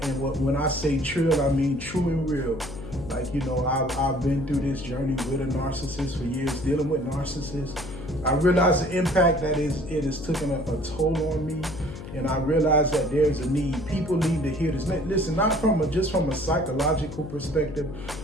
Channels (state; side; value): noise; left; hum, 11 dB below the sound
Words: I say trill, I mean true and real. I've been through this journey with a narcissist for years, dealing with narcissists. I realize the impact that it has taken a toll on me, and I realize that there's a need. People need to hear this. Listen, not just from a psychological perspective,